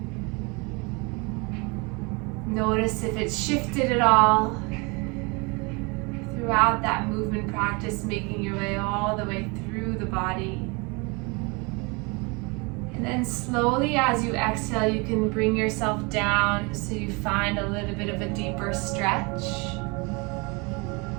Notice if it's shifted at all throughout that movement practice, making your way all the way through the body. And then slowly as you exhale, you can bring yourself down so you find a little bit of a deeper stretch.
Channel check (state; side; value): quieter; left; 29.0 dB